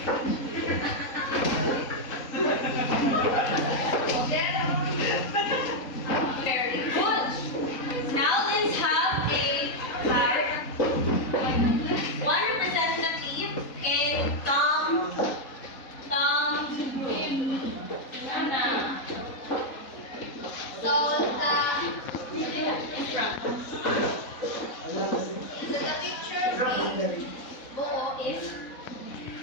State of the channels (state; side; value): late; right; 3.9 ms